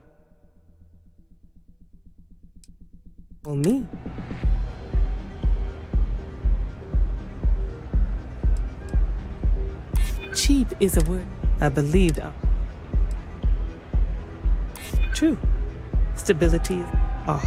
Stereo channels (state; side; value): identical; both; correlation 1.00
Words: for me, cheap is a word I believed. True. Stability. Our